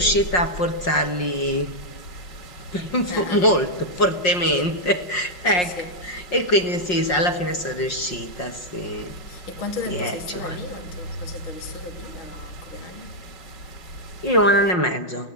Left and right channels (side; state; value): right; late; 5.5 ms